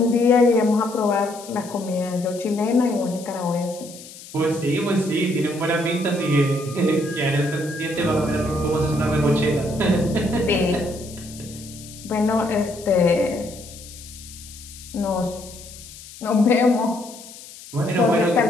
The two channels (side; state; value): left; noise; hiss, 17 dB below the sound